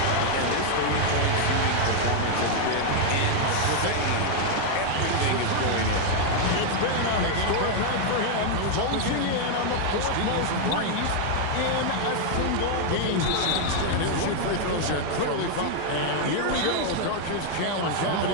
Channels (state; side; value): different; both; correlation 0.00